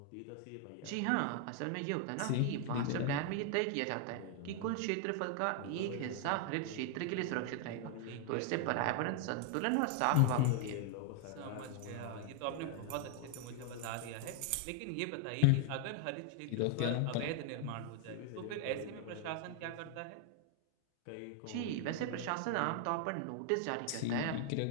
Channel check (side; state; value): both; different; correlation 0.00